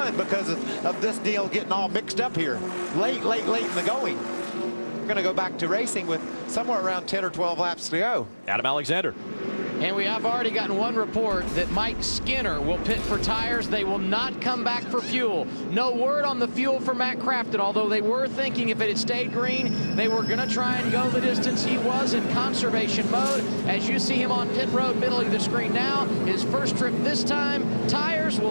because of this deal getting all mixed up here late in the going. We're going to go back to racing with somewhere around 10 or 12 laps to go. Adam Alexander. And we have already gotten one report that Mike Skinner will pit for tires. They will not come back for fuel. No word on the fuel for Matt Crafton, although they were thinking if it had stayed green, they were going to try and go the distance. He was in conservation mode. As you see him on pit road, middle of the screen now, his first trip this time. Tires,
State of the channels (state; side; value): inverted; both; correlation -1.00